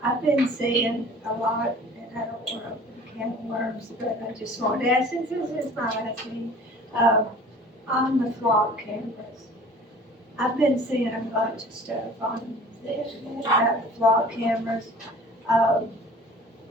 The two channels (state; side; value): normal; both; correlation 0.46